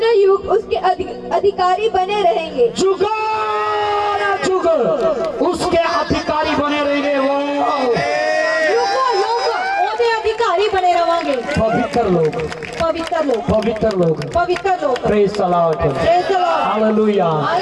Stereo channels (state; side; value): identical; both; correlation 1.00